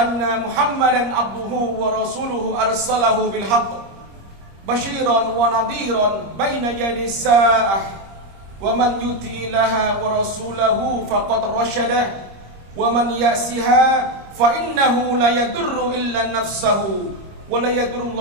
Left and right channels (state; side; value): late; left; 25 ms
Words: Muhammadan abduhu wa rasuluhu arsalahu bil haqq basyiran wa nadhiran baina yadi sa'ah wa man yuti ilaha wa rasulahu faqad rasyada wa man ya'siha fa innahu la yadurru illa nafsahu wa la yadurru